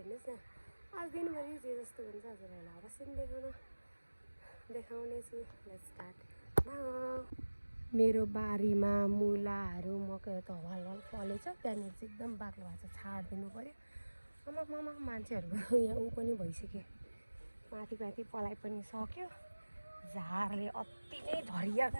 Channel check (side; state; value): both; inverted; correlation -1.00